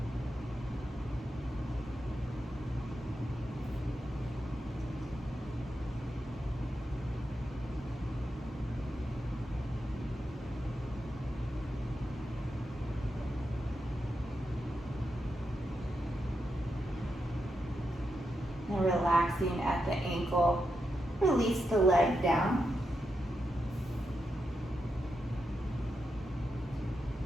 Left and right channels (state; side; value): normal; both; correlation 0.86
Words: And relaxing at the ankle. Release the leg down.